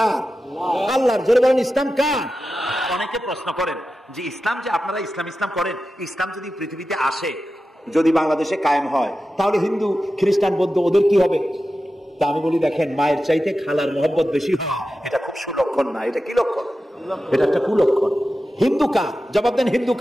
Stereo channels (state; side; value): normal; both; correlation 0.93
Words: আল্লাহর। জোরে বলেন, ইসলাম কার? অনেকে প্রশ্ন করেন যে ইসলাম যে আপনারা ইসলাম করেন, ইসলাম যদি পৃথিবীতে আসে, যদি বাংলাদেশে কায়েম হয়, তাহলে হিন্দু, খ্রিস্টান, বৌদ্ধ ওদের কি হবে? তা আমি বলি, দেখেন, মায়ের চাইতে খালার মহব্বত বেশি হয়, এটা খুব সুলক্ষণ না। এটা কি লক্ষণ? এটা একটা কুলক্ষণ। হিন্দু কার? জবাব দেন। হিন্দু